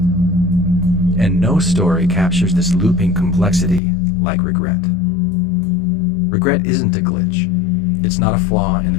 And no story captures this looping complexity like regret. Regret isn't a glitch. It's not a flaw in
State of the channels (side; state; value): right; drops out; at 3.8 s